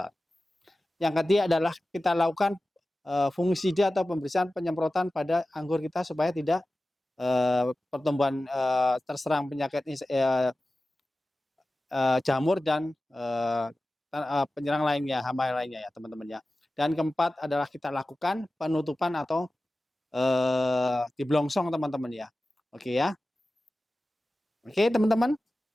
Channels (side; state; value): both; normal; correlation 0.95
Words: Yang ketiga adalah kita lakukan fungisida atau pembersihan penyemprotan pada anggur kita supaya tidak pertumbuhan terserang penyakit jamur dan penyerang lainnya, hama lainnya ya teman-teman ya. Dan keempat adalah kita lakukan penutupan atau diblongsong teman-teman ya. Oke ya. Oke teman-teman.